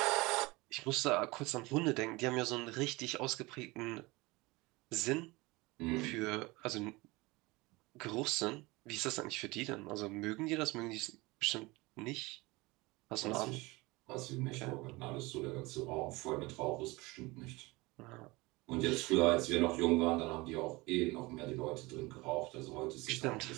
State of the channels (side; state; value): left; quieter; 22.9 dB